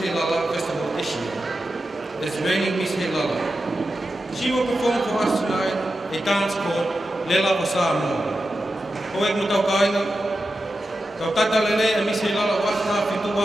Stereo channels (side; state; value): both; normal; correlation 0.91